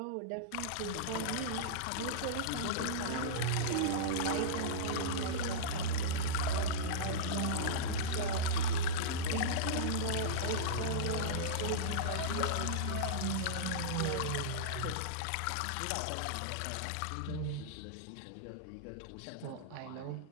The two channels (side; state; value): both; different; correlation -0.04